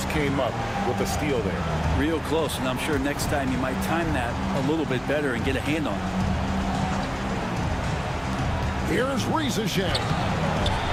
came up with a steal there. Real close, and I'm sure next time you might time that a little bit better and get a hand on it. Here's Rizashe.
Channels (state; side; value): identical; both; correlation 1.00